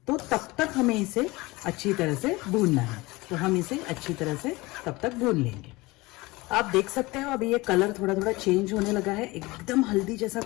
तो तब तक हमें इसे अच्छी तरह से भूनना है। तो हम इसे अच्छी तरह से तब तक भून लेंगे। आप देख सकते हो अभी ये कलर थोड़ा थोड़ा चेंज होने लगा है। एकदम हल्दी जैसा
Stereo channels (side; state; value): right; quieter; 22.0 dB